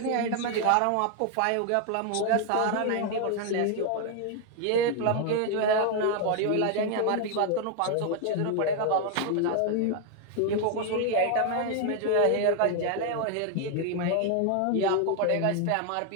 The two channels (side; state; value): both; different; correlation 0.00